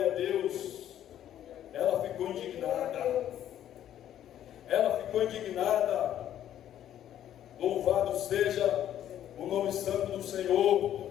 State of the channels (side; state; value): right; quieter; 11.1 dB